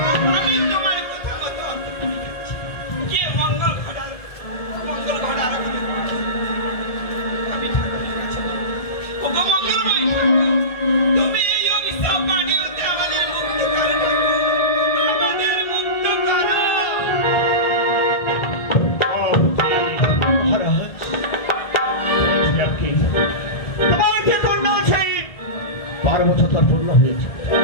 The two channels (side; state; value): right; late; 1.7 ms